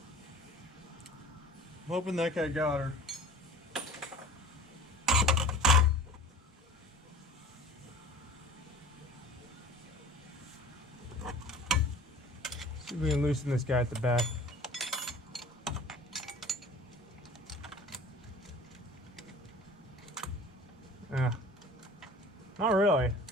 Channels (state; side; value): normal; both; correlation 0.43